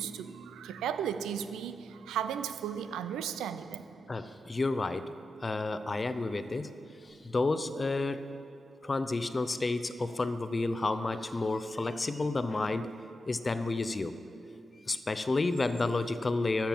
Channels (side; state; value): both; normal; correlation 0.89